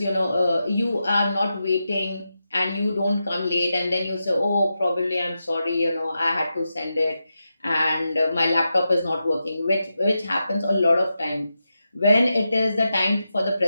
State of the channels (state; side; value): inverted; both; correlation -0.89